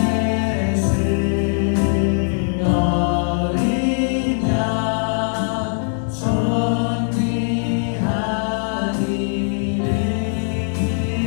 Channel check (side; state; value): right; silent; 59 dB below the other